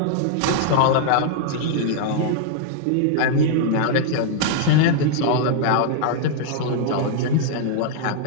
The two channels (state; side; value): different; both; correlation -0.01